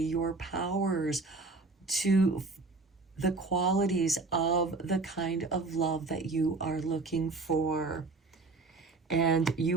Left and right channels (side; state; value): left; quieter; 3.8 dB